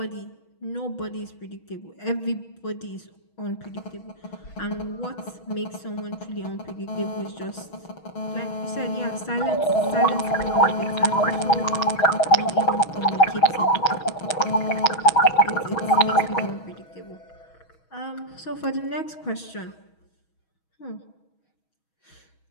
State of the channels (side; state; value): right; late; 6.2 ms